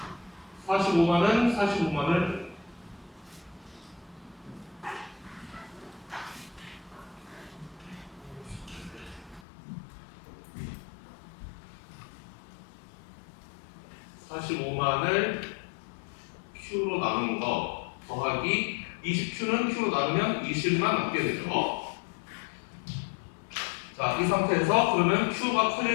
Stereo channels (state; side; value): drops out; right; at 9.4 s